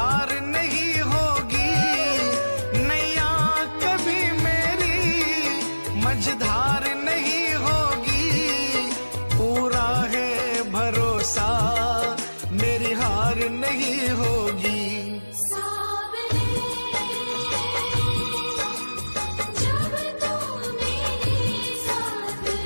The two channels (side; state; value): both; inverted; correlation -1.00